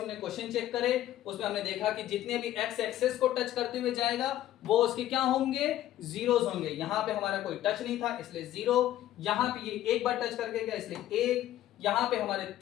क्वेश्चन चेक करे, उसमें हमने देखा कि जितने भी एक्स एक्सेस को टच करते हुए जाएगा वो उसके क्या होंगे? जीरोस होंगे। यहां पे हमारा कोई टच नहीं था इसलिए जीरो, यहां पे ये एक बार टच करके गया इसलिए एक, यहां पे हमारे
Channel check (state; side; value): quieter; right; 13.2 dB